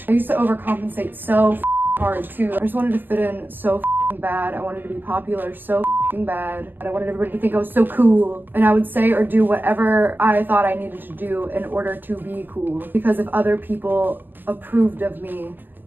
I used to overcompensate so hard too. I just wanted to fit in so bad. I wanted to be popular so bad. And I wanted everybody to think I was so cool. And I would say or do whatever I thought I needed to do in order to be cool. Because if other people approved of me,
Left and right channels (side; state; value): left; late; 0.089 ms